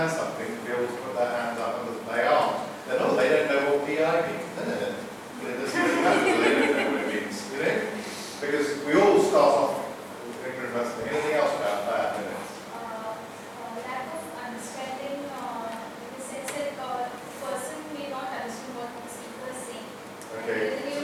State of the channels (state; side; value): identical; both; correlation 1.00